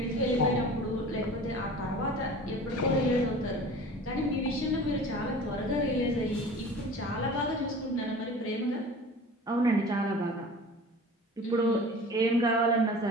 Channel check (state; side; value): normal; both; correlation 0.40